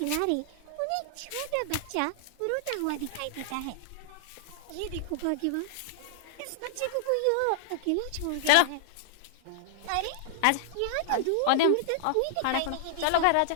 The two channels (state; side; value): different; both; correlation -0.01